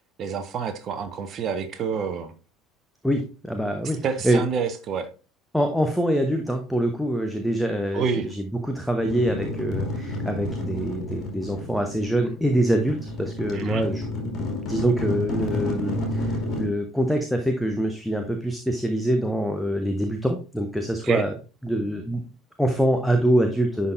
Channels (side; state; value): both; normal; correlation 0.77